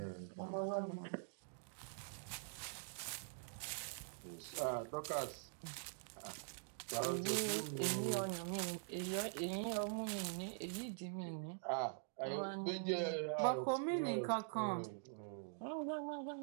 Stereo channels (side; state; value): left; silent; digital silence